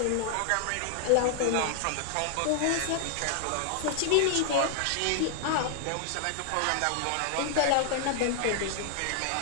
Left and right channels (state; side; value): different; both; correlation 0.00